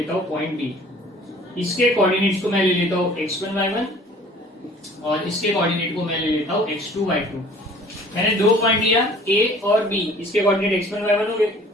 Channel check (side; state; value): both; normal; correlation 0.51